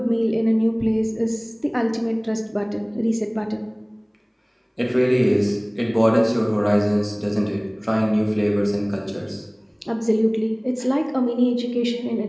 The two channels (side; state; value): both; identical; correlation 1.00